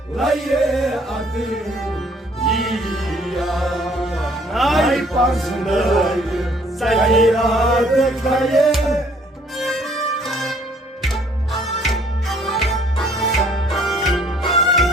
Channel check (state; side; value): normal; both; correlation 0.60